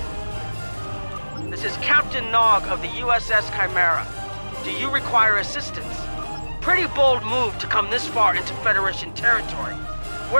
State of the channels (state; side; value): inverted; both; correlation -1.00